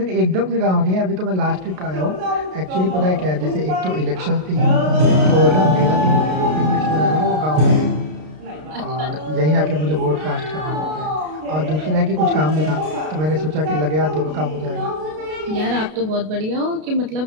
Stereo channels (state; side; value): late; left; 33 ms